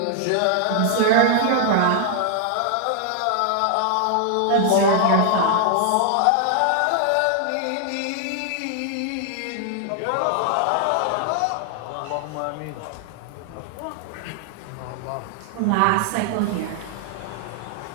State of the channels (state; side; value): different; both; correlation 0.00